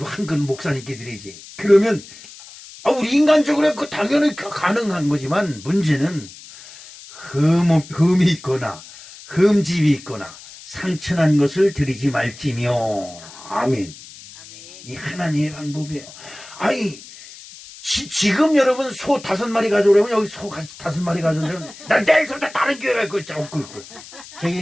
한 끗 목사님께 드리지. 그러면 우리 인간적으로 그 당연히 가능한 거지만 문제는 흠이 있거나 흠집이 있거나 상처난 것을 드리지 말지며. 아멘. 이 하나님의 방법이에요. 아니, 지금 여러분 소 5마리 가져오려면 여기 소 5마리 가져오려면 난 내일부터 다른 교회 갈 거야. 그럴 거야. 저기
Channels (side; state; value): left; noise; hiss, 18 dB below the sound